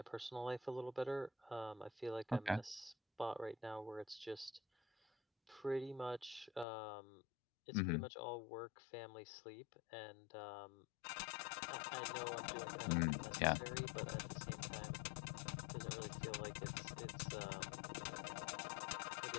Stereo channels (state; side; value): drops out; right; at 6.7 s